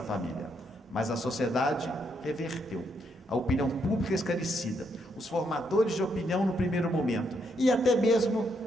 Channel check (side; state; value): both; normal; correlation 0.76